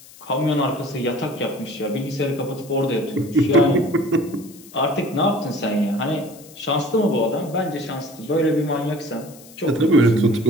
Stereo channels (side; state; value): left; noise; hiss, 21 dB below the sound